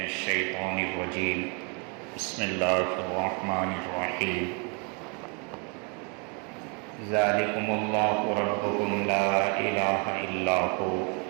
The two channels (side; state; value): left; quieter; 35.6 dB